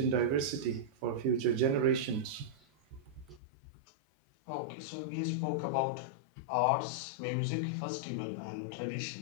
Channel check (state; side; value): drops out; right; at 3.4 s